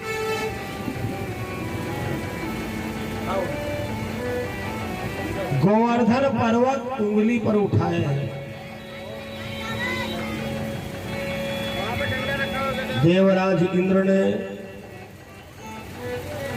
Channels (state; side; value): identical; both; correlation 1.00